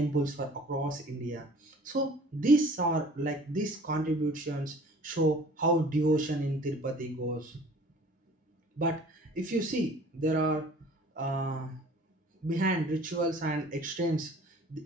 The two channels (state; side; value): normal; both; correlation 0.49